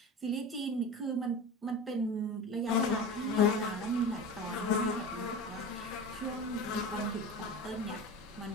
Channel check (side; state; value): both; normal; correlation 0.30